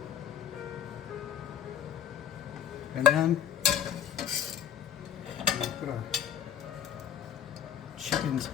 And then Put our chickens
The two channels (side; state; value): right; quieter; 9.5 dB